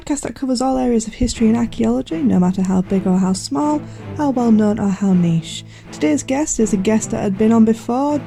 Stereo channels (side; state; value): both; identical; correlation 1.00